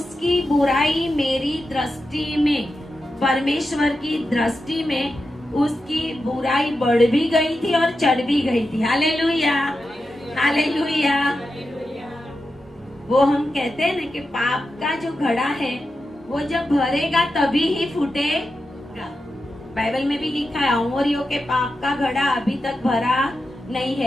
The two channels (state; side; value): normal; both; correlation 0.90